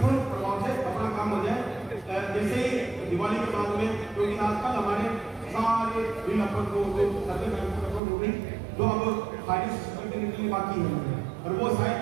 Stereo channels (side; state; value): left; drops out; at 8.0 s